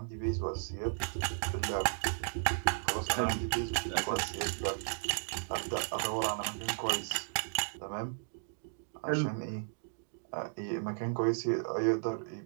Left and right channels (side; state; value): left; silent; digital silence